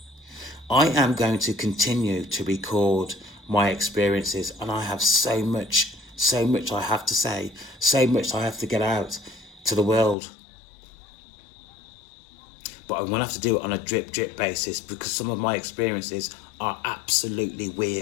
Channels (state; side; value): drops out; right; at 10.2 s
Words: I am going to continue to record my experiences, and I have so much I have to say, so much I have to get out to the world. But I'm going to have to do it on a drip basis because some of my experiences are absolutely